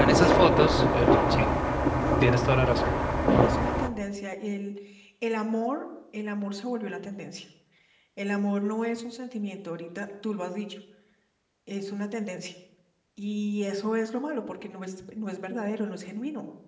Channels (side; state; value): both; identical; correlation 1.00